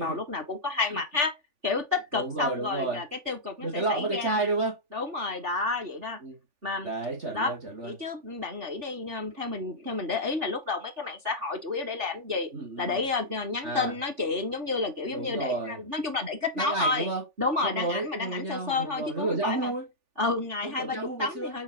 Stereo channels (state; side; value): late; left; 3.4 ms